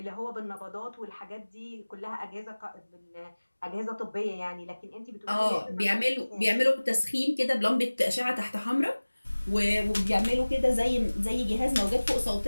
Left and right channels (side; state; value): both; inverted; correlation -1.00